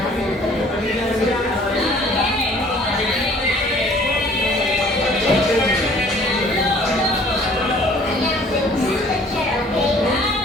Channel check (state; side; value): normal; both; correlation 0.54